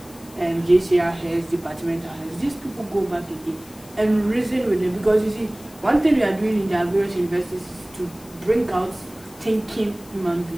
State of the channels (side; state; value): left; noise; hiss, 22 dB below the sound